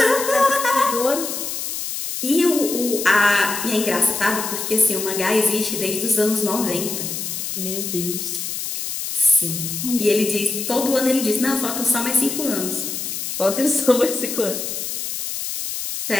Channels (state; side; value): noise; left; hiss, 5 dB below the sound